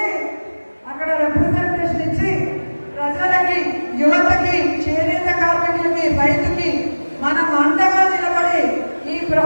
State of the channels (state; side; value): inverted; both; correlation -1.00